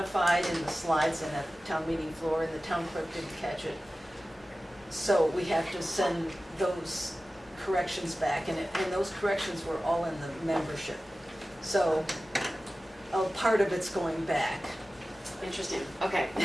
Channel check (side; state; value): both; normal; correlation 0.96